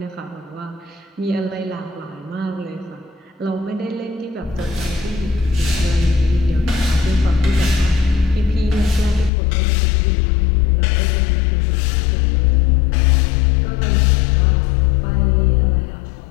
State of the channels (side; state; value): right; drops out; at 9.3 s